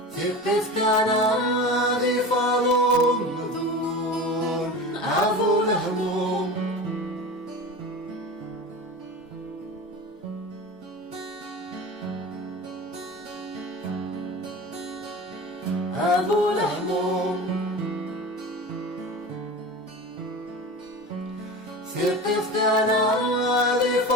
ثقف كان عادي فضل أبو الهموم أبو الهموم ثقف كان عادي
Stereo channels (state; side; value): normal; both; correlation 0.31